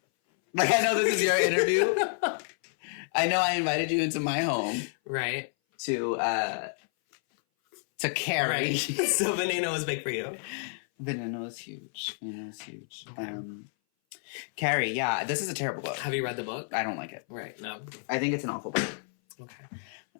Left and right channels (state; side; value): silent; right; 58 dB below the other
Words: Like, I know this is your interview. I know I invited you into my home Right. to carry. Right. So Veneno was big for you. Veneno is huge. Veneno is huge. Okay. Carrie, yeah, this is a terrible book. Have you read the book? I don't like it. Right, no. I think it's an awful book. Okay.